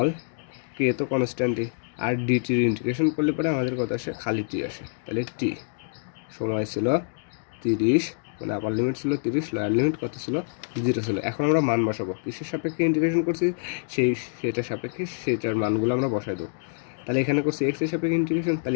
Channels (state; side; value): silent; right; digital silence